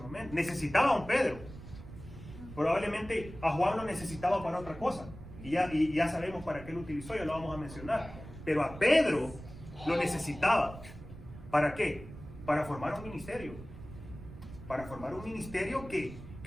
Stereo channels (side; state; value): right; noise; rumble, 14 dB below the sound